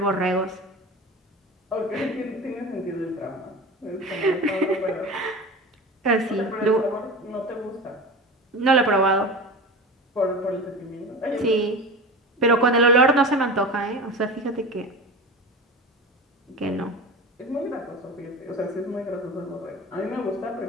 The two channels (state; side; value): normal; both; correlation 0.31